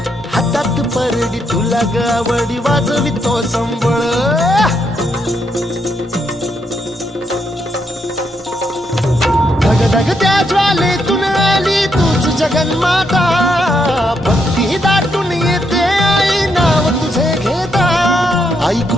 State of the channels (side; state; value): both; normal; correlation 0.78